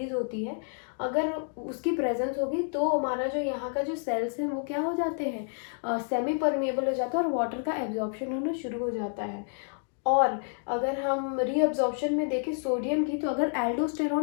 होती है, अगर उसकी प्रेजेंस होगी तो हमारा जो यहाँ का जो सेल्स हैं वो क्या हो जाते हैं, सेमी परमिएबल हो जाता है और वाटर का एब्जॉर्प्शन होना शुरू हो जाता है। और अगर हम रीअब्जॉर्प्शन में देखें सोडियम की, तो अगर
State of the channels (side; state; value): right; silent; 57 dB below the other